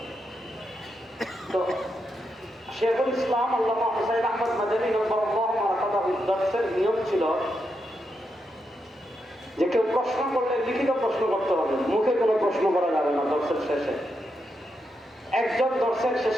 তো শেখুল ইসলাম আল্লামা হুসাইন আহমদ মাদানী নব্বরাল্লাহু মারকাদাহু দর্সের নিয়ম ছিল যে কেউ প্রশ্ন করলে লিখিত প্রশ্ন করতে হবে, মুখে কোনো প্রশ্ন করা যাবে না। দর্সের শেষে একজন দর্শক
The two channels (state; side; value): normal; both; correlation 0.84